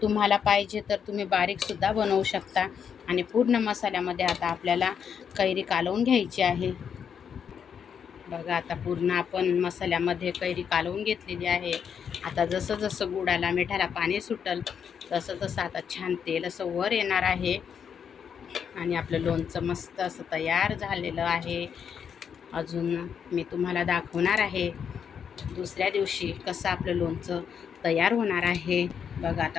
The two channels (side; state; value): right; quieter; 7.5 dB